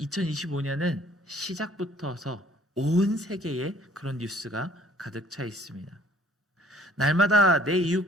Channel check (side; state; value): both; normal; correlation 0.58